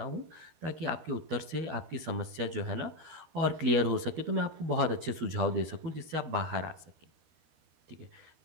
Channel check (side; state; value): left; late; 13 ms